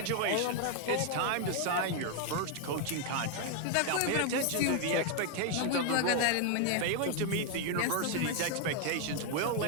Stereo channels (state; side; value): different; both; correlation 0.00